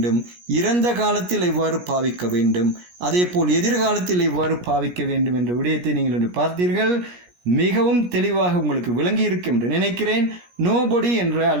இறந்த காலத்தில் எவ்வாறு பாவிக்க வேண்டும், அதே போல் எதிர்காலத்தில் எவ்வாறு பாவிக்க வேண்டும் என்ற விடயத்தை நீங்கள் இன்று பார்த்தீர்கள். மிகவும் தெளிவாக உங்களுக்கு விளங்கி இருக்கும் என்று நினைக்கிறேன். நோபடி என்ற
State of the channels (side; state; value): left; late; 17 ms